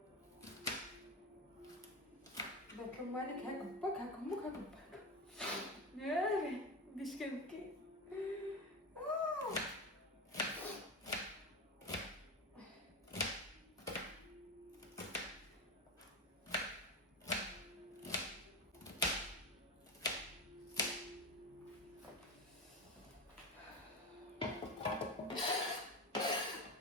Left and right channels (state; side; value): normal; both; correlation 0.21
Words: باك مالك هاك باك هاك امك هاك باك ياي بديش كنبكي.